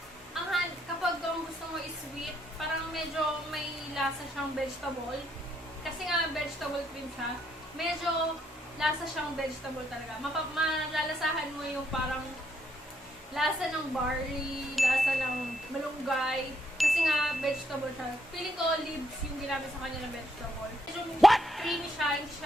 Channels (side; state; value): both; normal; correlation 0.74